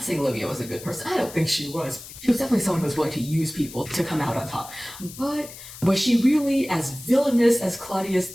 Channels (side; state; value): left; noise; hiss, 15 dB below the sound